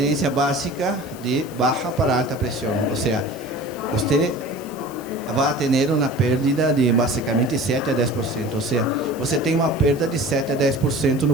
básica de baixa para alta pressão. Ou seja, você vai ter uma perda de basicamente 7 a 10%. Ou seja, você tem uma perda de 7 a 10%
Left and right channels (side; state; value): left; noise; hiss, 20 dB below the sound